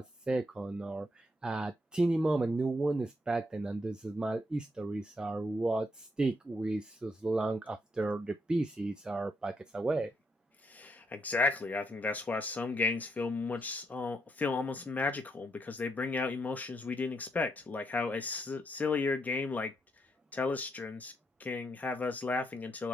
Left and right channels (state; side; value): normal; both; correlation 0.77